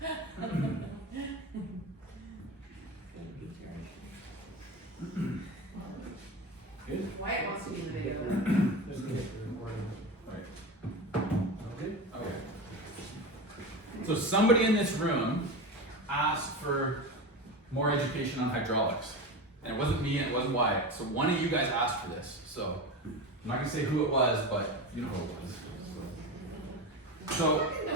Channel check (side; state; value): both; normal; correlation 0.24